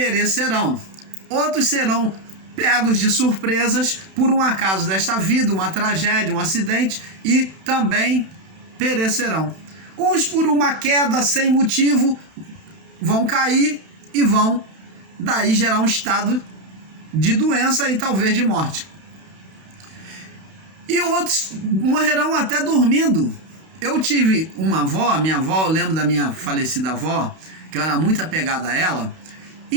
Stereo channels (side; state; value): left; late; 31 ms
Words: Outros serão pegos de surpresas por um acaso desta vida, uma tragédia, um acidente, e também perecerão. Uns por uma queda sem motivo vão cair e vão daí gerar um estado de doença e talvez de morte. E outros morrerão até dormindo. Eu tive uma avó, minha avó, eu lembro da minha falecida avó, que eu era muito apegada a ela,